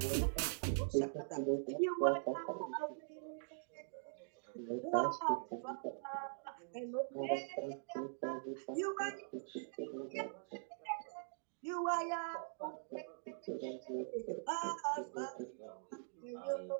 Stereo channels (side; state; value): left; silent; digital silence